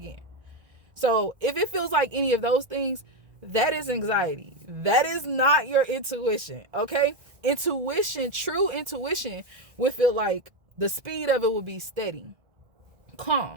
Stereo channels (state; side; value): late; left; 1.7 ms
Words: So if it feels like any of those things, that is anxiety. That is not your intuition, okay? Intuition, true intuition, would feel like the speed of it would be steady,